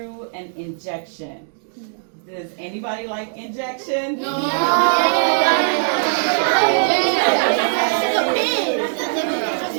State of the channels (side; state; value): left; silent; digital silence